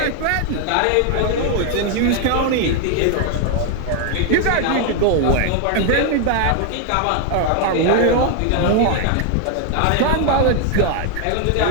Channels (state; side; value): different; both; correlation 0.01